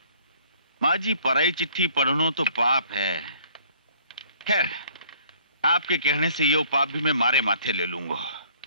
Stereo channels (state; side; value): inverted; both; correlation -0.58